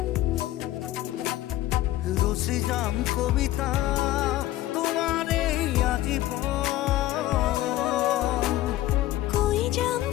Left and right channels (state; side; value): quieter; right; 15.2 dB